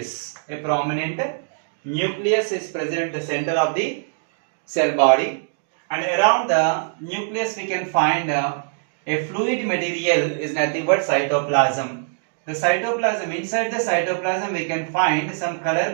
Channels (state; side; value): silent; left; digital silence